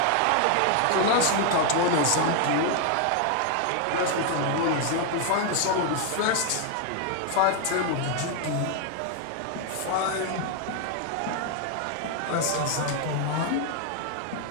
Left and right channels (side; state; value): both; different; correlation 0.00